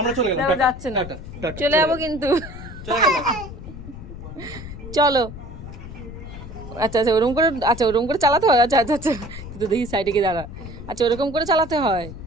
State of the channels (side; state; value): left; noise; rumble, 12 dB below the sound